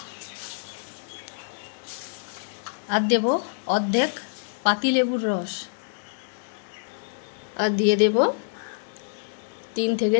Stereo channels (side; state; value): right; silent; digital silence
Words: और देव अर्धेक पातिलेबुर रस और दिए देव 3 থেকে